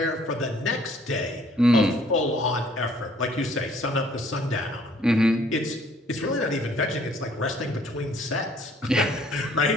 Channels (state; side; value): normal; both; correlation 0.60